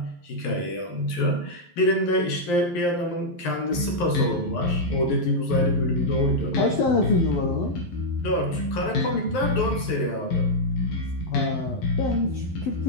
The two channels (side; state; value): right; late; 11 ms